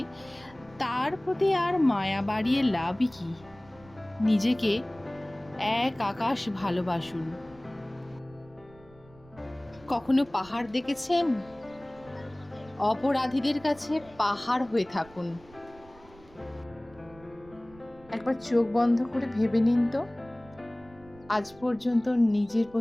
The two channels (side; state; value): right; noise; rumble, 24 dB below the sound